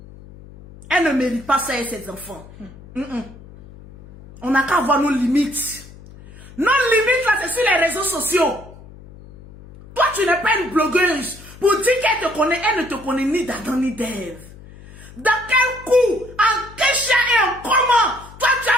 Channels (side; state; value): left; noise; hum, 19 dB below the sound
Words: elle ne mérite pas ça et ses enfants. On n'a qu'à avoir nos limites. Nos limites, là, c'est sur les réseaux sociaux. Toi, tu n'es pas une blogueuse. Pour dire qu'elle te connaît, elle ne te connaît ni d'Adam ni d'Ève. Dans quel coup, en quel chien et en comment, toi, tu